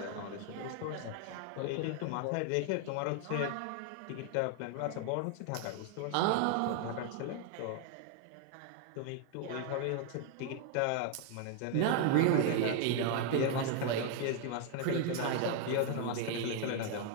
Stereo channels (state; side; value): different; both; correlation 0.00